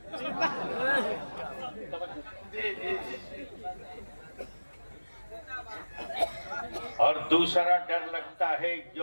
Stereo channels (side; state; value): both; inverted; correlation -1.00